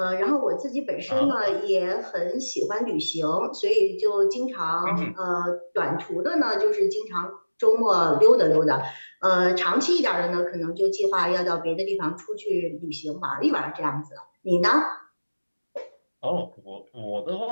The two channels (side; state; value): both; inverted; correlation -1.00